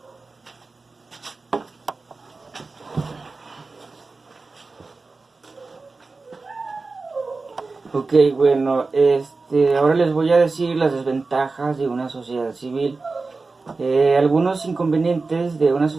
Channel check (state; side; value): quieter; left; 3.9 dB